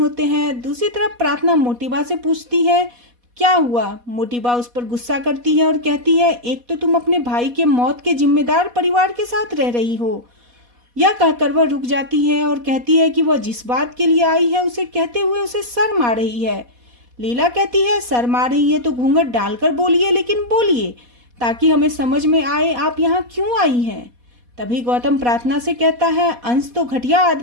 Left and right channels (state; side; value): late; left; 4.1 ms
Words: हैं। दूसरी तरफ प्रार्थना मोटीबा से पूछती है क्या हुआ। मोटीबा उस पर गुस्सा करती है और कहती है एक तो तुम अपने भाई के मौत के जिम्मेदार परिवार के साथ रह रही हो। यह कहकर वह रुक जाती है और कहती है कि वह जिस बात के लिए आई है उसे कहते हुए उसे शर्म आ रही है। लीला कहती है शर्म आ रही है तो घूंघट डालकर बोलिए, लेकिन बोलिए ताकि हमें समझ में आए आप यहाँ क्यों आई हैं। तभी गौतम प्रार्थना से कहता है अंश तो घटिया